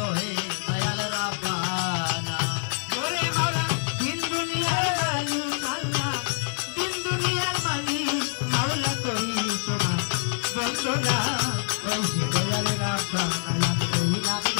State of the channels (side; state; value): right; silent; digital silence